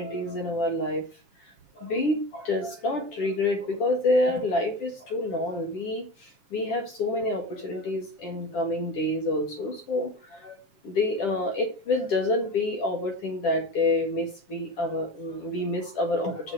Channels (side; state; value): right; late; 7.3 ms